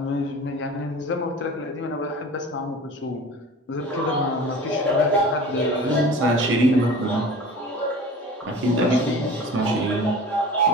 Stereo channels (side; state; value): both; normal; correlation 0.39